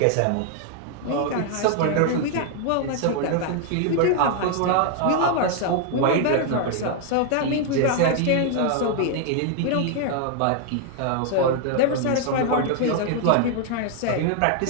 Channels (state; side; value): different; both; correlation 0.00